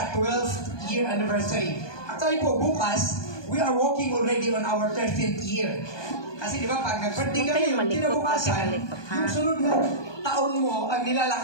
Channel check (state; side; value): late; right; 1.2 ms